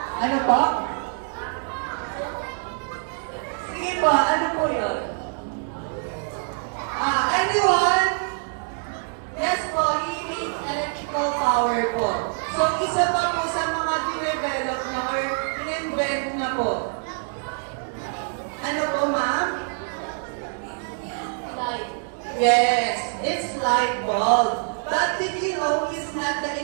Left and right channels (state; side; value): silent; left; 62 dB below the other